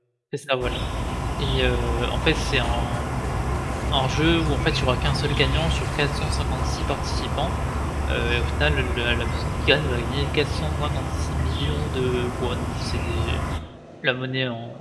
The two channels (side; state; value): both; identical; correlation 1.00